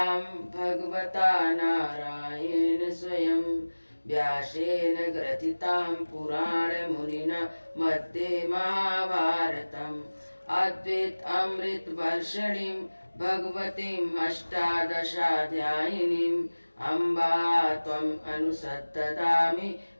भगवता नारायण स्वयं व्यासेन ग्रथितां पुराण मुनिना मध्ये महाभारतम् अद्वैत अमृत वर्षिणीं भगवतीम् अष्टादशाध्यायिनीम् अम्बा त्वम् अनुसत्तदामि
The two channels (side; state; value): both; inverted; correlation -1.00